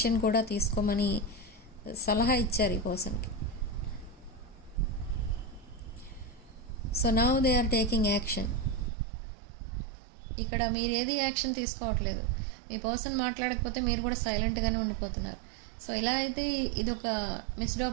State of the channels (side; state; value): left; drops out; at 8.9 s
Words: కూడా తీసుకోమని సలహా ఇచ్చారు ఈ పర్సన్కి. So now they are taking action. ఇక్కడ మీరు ఏది యాక్షన్ తీసుకోవట్లేదు, మీ పర్సన్ మాట్లాడకపోతే మీరు కూడా సైలెంట్గానే ఉండిపోతున్నారు. సో ఇలా అయితే ఇది ఒక మిస్డ్